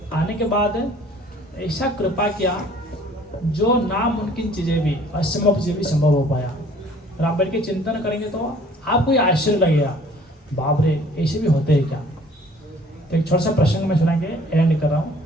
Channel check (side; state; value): both; normal; correlation 0.54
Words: आने के बाद ऐसा कृपा किया जो नामुमकिन चीज़ें भी, असंभव चीज़ें भी संभव हो पाया। और आप बैठ के चिंतन करेंगे तो आपको ये आश्चर्य लगेगा, बाप रे ऐसे भी होते हैं क्या। तो एक छोटा सा प्रसंग में सुना के एंड कर रहा हूँ।